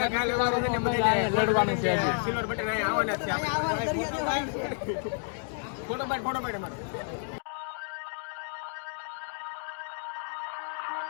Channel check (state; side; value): silent; right; digital silence